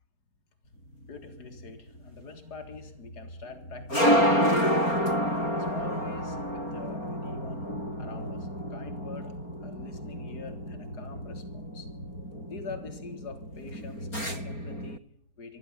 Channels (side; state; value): right; late; 4.3 ms